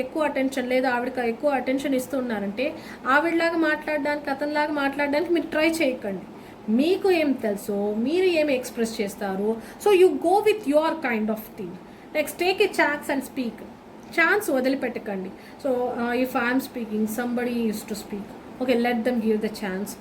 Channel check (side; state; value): both; identical; correlation 1.00